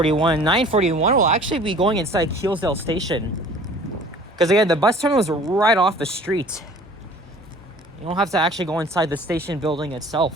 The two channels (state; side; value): normal; both; correlation 0.48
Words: 941 will actually be going inside Keelsdale Station. Because again, the bus terminal is right off the street. You don't have to actually go inside the station building